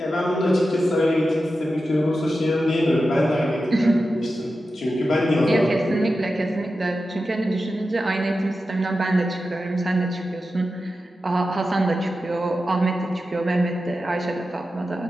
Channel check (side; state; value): both; normal; correlation 0.91